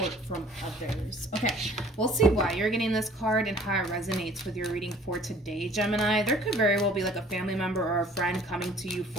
from others. Okay, we'll see why you're getting this card and how it resonates with your reading for today, Gemini. There could very well be like a family member or a friend coming to you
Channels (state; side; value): normal; both; correlation 0.53